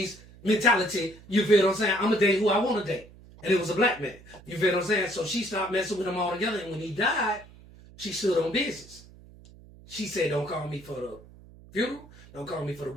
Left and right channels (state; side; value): noise; right; hum, 22 dB below the sound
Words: mentality. You feel what I'm saying? I'm going to date who I want to date. And it was a black man. You feel what I'm saying? So she stopped messing with him altogether. And when he died, she stood on business. She said, don't call me for the funeral. Don't call me for the